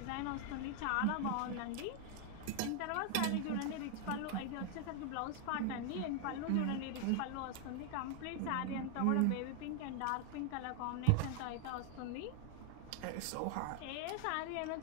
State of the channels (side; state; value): both; different; correlation 0.00